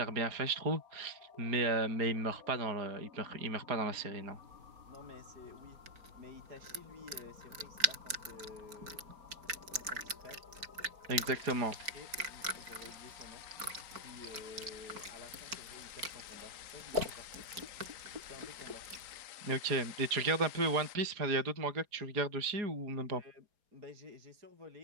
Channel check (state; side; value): late; left; 4.5 ms